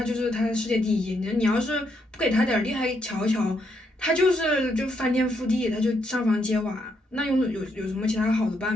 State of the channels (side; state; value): both; normal; correlation 0.77